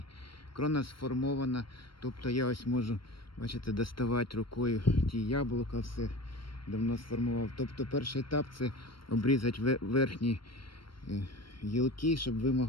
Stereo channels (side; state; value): right; late; 0.73 ms